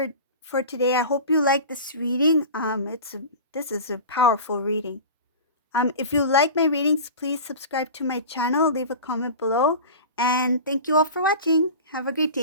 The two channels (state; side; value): inverted; both; correlation -0.34